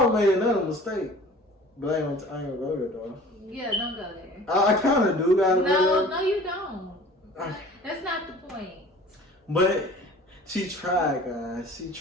made another mistake. But I ain't gonna go there, though. Yeah, don't go there. I kind of do gotta go there. No, you don't. That's not the point. But she tried, guys. She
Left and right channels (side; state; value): both; normal; correlation 0.46